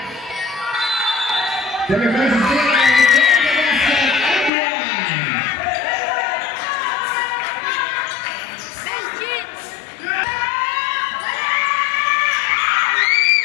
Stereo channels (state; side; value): drops out; right; at 4.5 s